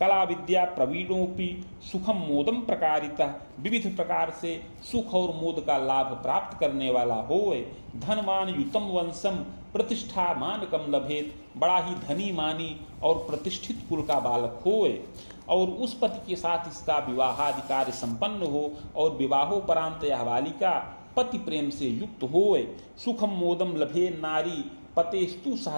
कला विद्या प्रवीणोपि सुखम मोदम प्रकारितः। विविध प्रकार से सुख और मोद का लाभ प्राप्त करने वाला होए। धनमान युतम वंशम प्रतिष्ठा मानकम लभेत। बड़ा ही धनी मानी और प्रतिष्ठित कुल का बालक होए और उस पति के साथ इसका विवाहाधिकार संपन्न हो और विवाहोपरांत यह बालिका पति प्रेम से युक्त होए। सुखम मोदम लभे नारी पतेस्तु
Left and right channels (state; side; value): inverted; both; correlation -1.00